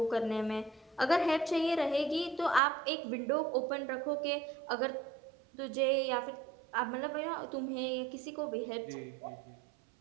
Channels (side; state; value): left; drops out; at 2.6 s